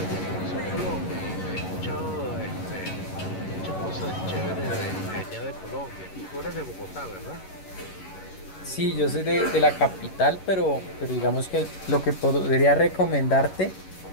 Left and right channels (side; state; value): right; late; 11 ms